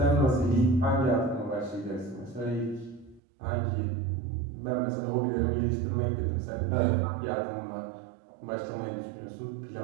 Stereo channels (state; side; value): drops out; left; at 3.2 s